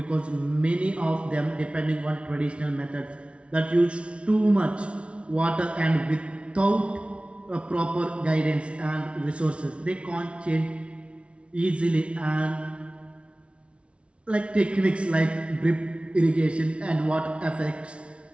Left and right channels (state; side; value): late; left; 0.060 ms